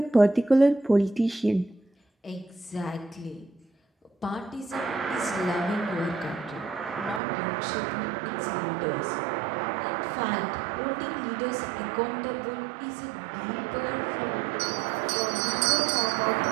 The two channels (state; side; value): drops out; left; at 7.2 s